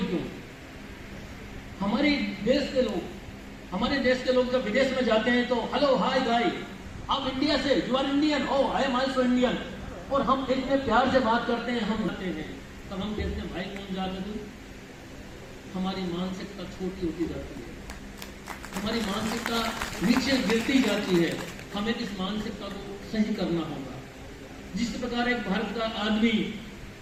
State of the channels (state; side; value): identical; both; correlation 1.00